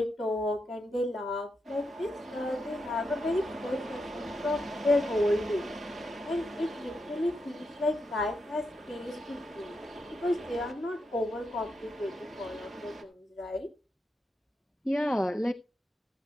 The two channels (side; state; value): both; normal; correlation 0.84